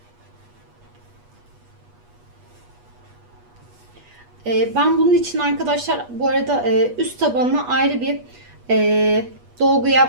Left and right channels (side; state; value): left; late; 8.3 ms